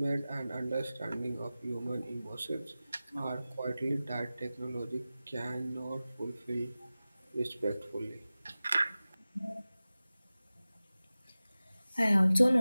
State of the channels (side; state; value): both; inverted; correlation -0.96